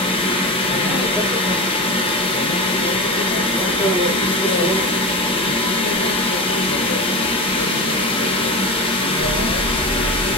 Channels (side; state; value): both; normal; correlation 0.23